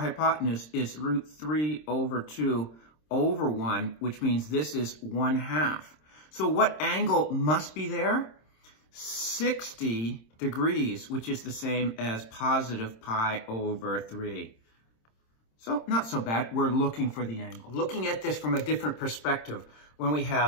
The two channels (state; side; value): late; right; 26 ms